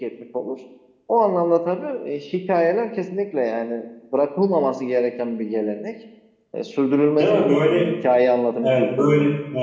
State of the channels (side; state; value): both; identical; correlation 1.00